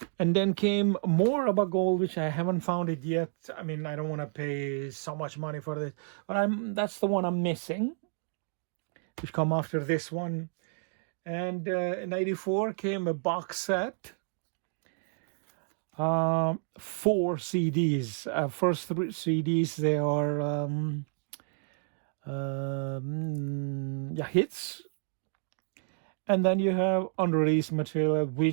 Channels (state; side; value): silent; left; digital silence